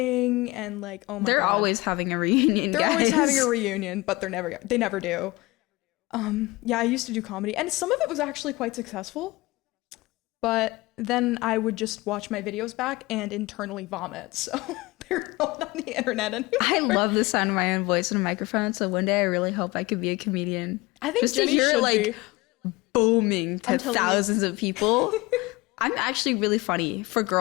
and like, oh my They're God. always having a reunion. They're always guys. having a reunion, but they never do. Yeah, I used to do comedy, and some of it was actually quite successful. But then I would just watch my videos back and internally vomit. So they're not on the internet anymore. I love the sound of my own voice in a microphone, so one day I really hope I could be a comedian. I think just Jenny to hear should it like be. booming to I'm telling you. thousands of people. I'm actually really funny for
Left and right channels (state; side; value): quieter; right; 21.8 dB